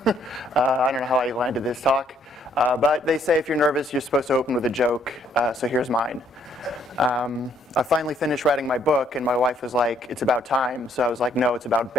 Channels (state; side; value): normal; both; correlation 0.67